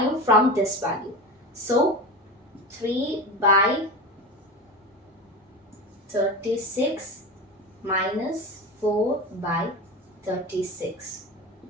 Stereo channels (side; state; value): both; normal; correlation 0.26